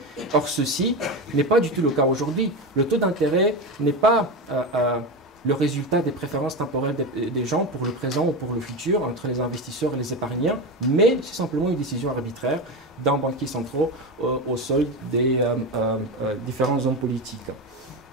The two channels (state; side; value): normal; both; correlation 0.19